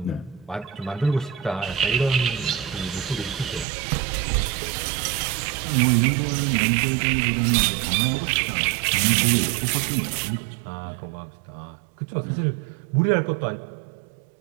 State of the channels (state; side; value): drops out; left; at 3.7 s